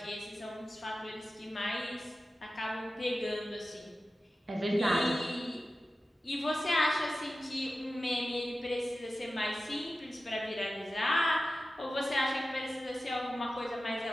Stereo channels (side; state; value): both; normal; correlation 0.94